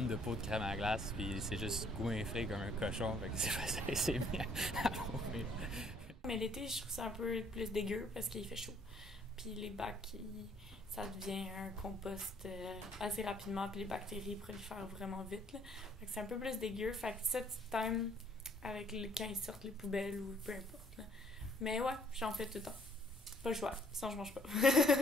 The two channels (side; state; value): both; normal; correlation 0.62